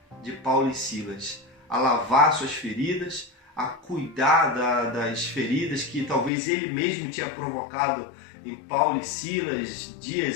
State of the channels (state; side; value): drops out; right; at 6.3 s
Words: de Paulo e Silas, a lavar suas feridas, a cuidar das feridas que talvez ele mesmo tinha provocado em Paulo e Silas